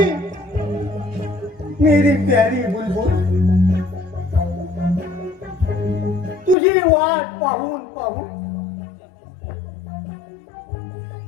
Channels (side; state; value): right; drops out; at 6.6 s